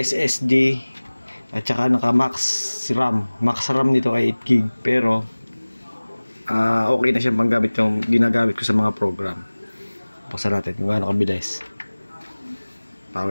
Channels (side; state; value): both; inverted; correlation -1.00